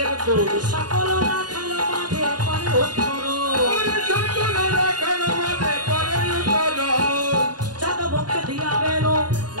সকল রাখাল মাঝে পরে উত্তর, চাঁদ মুখে দিয়া বেল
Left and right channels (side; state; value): left; late; 0.69 ms